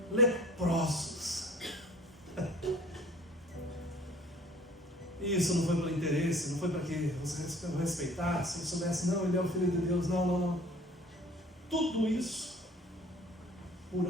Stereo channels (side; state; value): both; normal; correlation 0.49